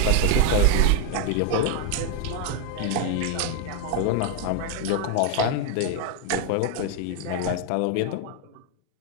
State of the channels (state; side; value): different; both; correlation 0.00